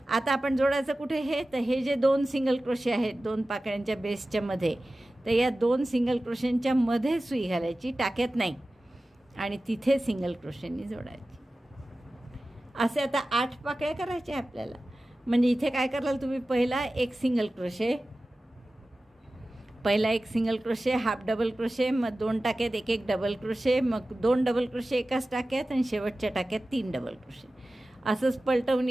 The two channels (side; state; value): both; normal; correlation 0.96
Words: आता आपण जोडायचं कुठे हे, तर हे जे 2 सिंगल क्रोशे आहेत 2 पाकळ्यांच्या बेसच्या मध्ये, तर या 2 सिंगल क्रोशेंच्या मध्ये सुई घालायची, टाक्यात नाही, आणि तिथे सिंगल क्रोशेंनी जोडायची. असे आता 8 पाकळ्या करायच्या आपल्याला. म्हणजे इथे काय कराल तुम्ही, पहिला एक सिंगल क्रोशे, पहिला एक single crochet, half double crochet, मग 2 टाक्यात एक डबल क्रोशे, मग 2 डबल क्रोशे एकाच टाक्यात आणि शेवटच्या टाक्यात 3 डबल क्रोशे. असंच पलटवून